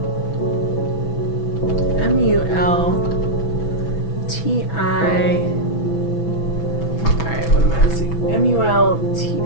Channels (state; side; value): late; right; 6.0 ms